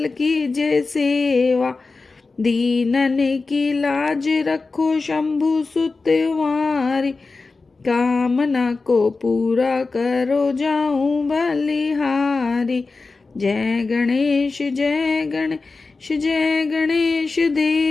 कीजे सेवा, दीनन की लाज रखो शंभु सुतवारी, कामना को पूरा करो जाऊं बलिहारी। जय गणेश जय गणेश जय गणेश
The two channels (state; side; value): quieter; right; 3.9 dB